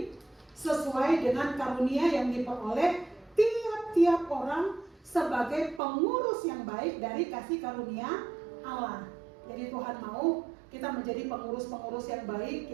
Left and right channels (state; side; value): drops out; left; at 5.8 s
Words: sesuai dengan karunia yang diperoleh tiap-tiap orang sebagai pengurus yang baik dari kasih karunia Allah. Jadi Tuhan mau kita menjadi pengurus-pengurus yang baik,